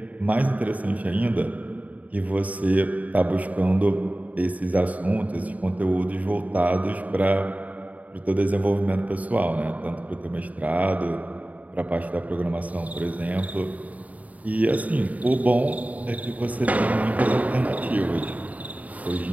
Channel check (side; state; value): left; late; 0.072 ms